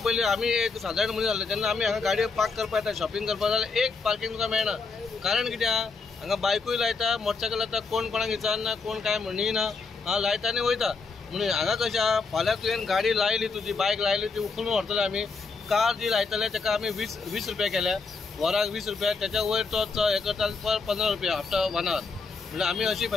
आमी एक सादारण मनीस जाल्ले जेन्ना आमी हांगा गाडयो पार्क करपाक येता, शॉपिंग करपाक जाल्यार एक पार्किंग तुका मेळना। कारण कित्या हांगा बायकूय लायता, मोटरसायकल लायता, कोण कोणाक विचारना, कोण काय म्हणिना, लायता आनी वयता। म्हणून हांगा कशें आहा, फाल्यां तुवें गाडी लायली, तुजी बायक लायली, ती उखलून व्हरतले आमी। कार जी लायतले ताका आमी 20 रुपया केल्या, वराक 20 रुपया, त्याच्या वयर तो हे करता पर 15 रुपया आफ्टर 1 आवर। म्हणजे आमी अशी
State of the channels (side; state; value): right; quieter; 4.5 dB